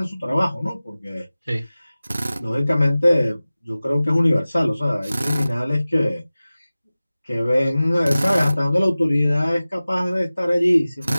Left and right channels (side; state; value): both; inverted; correlation -0.97